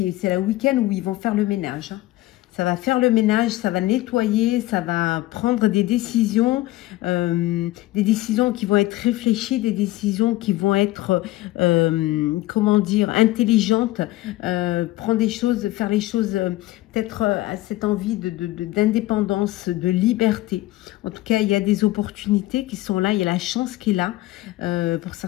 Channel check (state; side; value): quieter; right; 17.3 dB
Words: c'est le week-end où ils vont faire le ménage, hein. Ça va faire le ménage, ça va nettoyer, ça va prendre des décisions qui vont être réfléchies, des décisions qui vont être, comment dire, intelligentes, prendre des choses, faire les choses, peut-être à cette envie d'indépendance, de liberté. En tout cas, il y a des opportunités qui sont là, il y a la chance qui est là. Pour